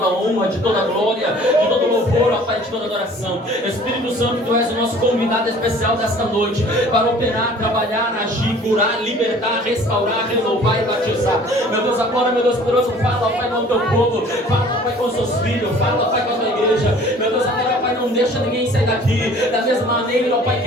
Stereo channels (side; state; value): both; normal; correlation 0.50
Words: honra, de toda glória, de todo louvor, ó Pai, de toda adoração. Espírito Santo, Tu és o nosso convidado especial desta noite, para operar, trabalhar, agir, curar, libertar, restaurar, renovar e batizar. Meu Deus, agora, meu Deus poderoso, fala, Pai, com o Teu povo, fala, Pai, com os Teus filhos, fala, Pai, com a Tua igreja. Meu Deus, agora, Pai, não deixa ninguém sair daqui da mesma maneira, ó Pai,